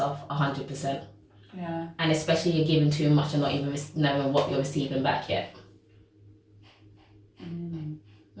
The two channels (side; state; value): both; identical; correlation 1.00